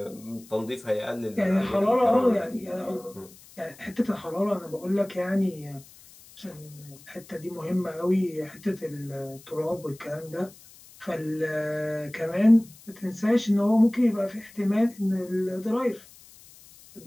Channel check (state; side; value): noise; left; hiss, 22 dB below the sound